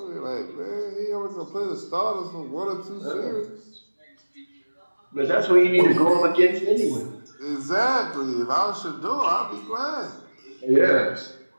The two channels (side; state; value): both; inverted; correlation -1.00